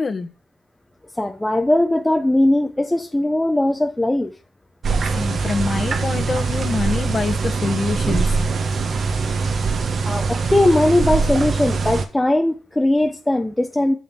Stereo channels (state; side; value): normal; both; correlation 0.93